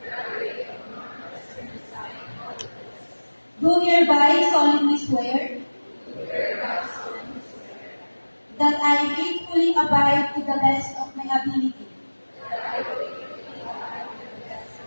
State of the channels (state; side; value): inverted; both; correlation -1.00